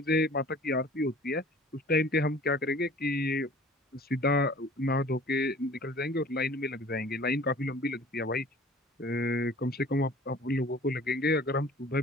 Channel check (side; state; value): both; normal; correlation 0.48